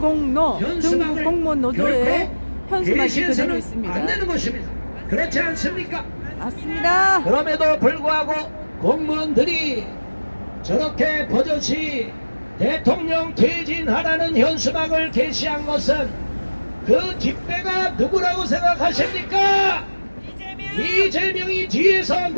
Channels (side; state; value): both; inverted; correlation -1.00